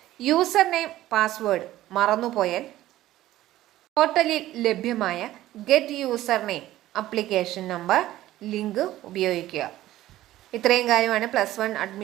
യൂസർ നെയിം, പാസ്വേഡ് മറന്നുപോയാൽ പോർട്ടലിൽ ലഭ്യമായ get user name, application number link ഉപയോഗിക്കുക. ഇത്രയും കാര്യമാണ് +1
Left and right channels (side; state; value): left; quieter; 14.8 dB